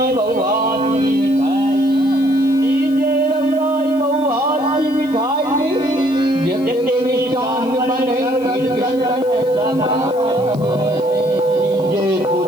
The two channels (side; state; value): left; noise; hiss, 25 dB below the sound